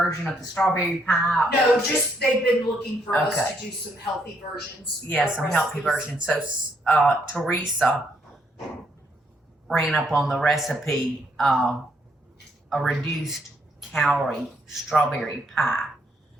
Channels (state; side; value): normal; both; correlation 0.73